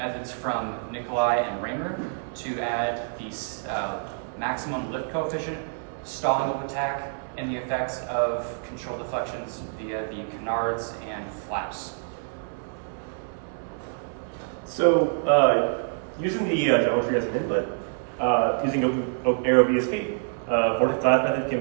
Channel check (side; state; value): left; silent; 59 dB below the other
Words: from Nikolai and Raymer to add the maximum lift coefficient, stalling of attack, and the effects of control deflections via the canards and flaps. So, using the geometry as an input, using AeroVSP, vortex dive method can